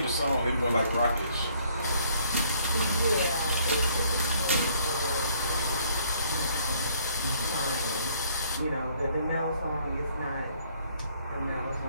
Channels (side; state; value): both; inverted; correlation -0.63